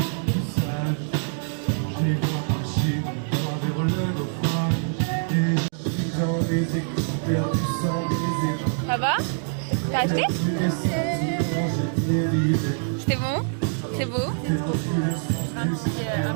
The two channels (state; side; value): silent; left; 62 dB below the other